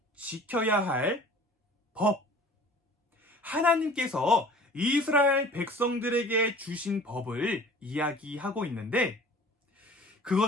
지켜야 할 법, 하나님께서 이스라엘 백성들에게 주신 법을 이야기하고 있는데,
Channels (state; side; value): normal; both; correlation 0.46